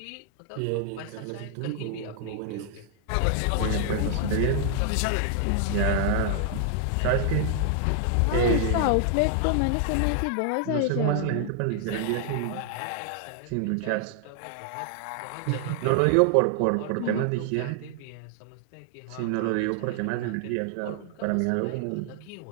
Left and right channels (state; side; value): different; both; correlation 0.00